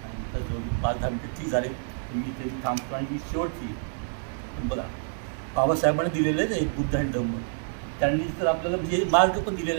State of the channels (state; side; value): silent; left; 60 dB below the other